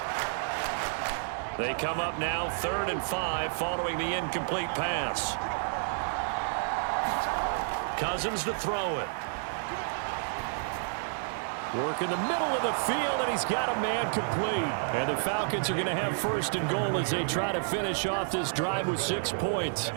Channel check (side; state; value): left; silent; digital silence